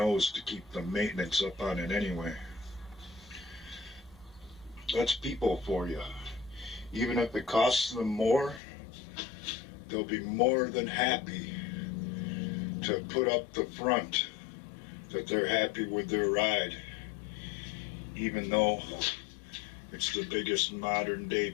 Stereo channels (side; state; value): right; drops out; at 8.6 s